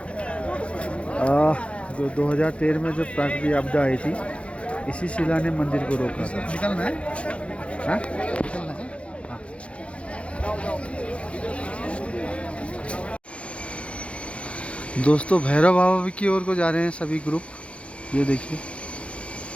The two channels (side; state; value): right; late; 0.061 ms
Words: 2013 में जो प्राकृतिक आपदा आई थी, इसी शिला ने मंदिर को रोका था। निकलना है? हाँ? निकलना है? हाँ। दोस्तों भैरव बाबा की ओर को जा रहे हैं सभी ग्रुप। ये देखिए